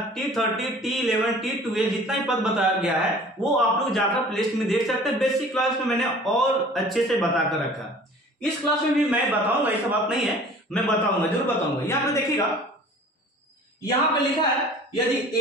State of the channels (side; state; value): both; normal; correlation 0.46